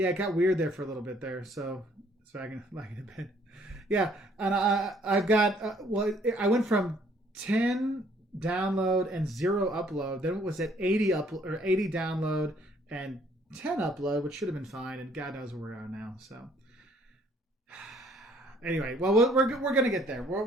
got weird there for a little bit there, so I can lag it a bit. Yeah, and I've got, I went from 10 download and 0 upload. Then it was at 80 upload or 80 download and 10 upload, which should have been fine. And God knows where we're at now. So anyway, well, we're gonna get there.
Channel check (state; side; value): normal; both; correlation 0.63